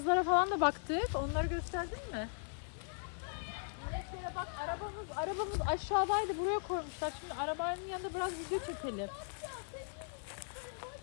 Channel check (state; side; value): silent; right; digital silence